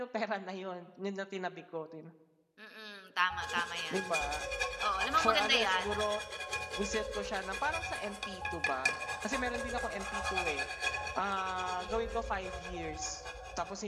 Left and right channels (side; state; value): both; identical; correlation 1.00